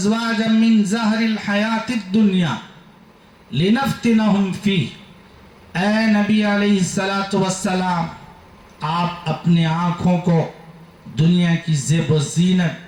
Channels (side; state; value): both; identical; correlation 1.00